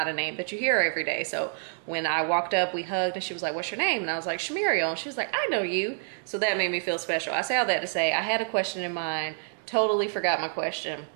a name that you hear every day. So when I walked up, we hugged and she was like, what's your name? And I was like, Shumuriel. And she was like, I know you. So that made me feel special. I say all that to say I had a question in mind, totally forgot my question,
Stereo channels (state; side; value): silent; left; 59 dB below the other